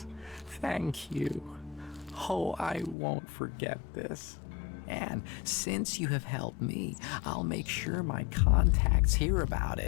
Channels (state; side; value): drops out; right; at 3.0 s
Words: Thank you. Oh, I won't forget this. And since you have helped me, I'll make sure my contacts hear about